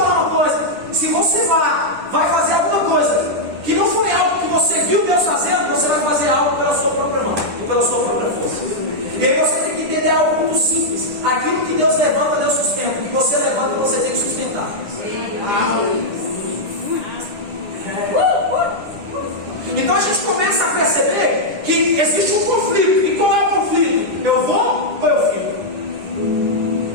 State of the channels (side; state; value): left; late; 10 ms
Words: uma coisa: se você vai fazer alguma coisa que não foi algo que você viu Deus fazendo, você vai fazer algo pela sua própria mão e pela sua própria força. E aí você tem que entender algo muito simples: aquilo que Deus levanta, Deus sustenta. O que você levanta, você tem que sustentar. Então a gente começa a perceber que existe um conflito. E qual é o conflito? Eu vou ou eu fico?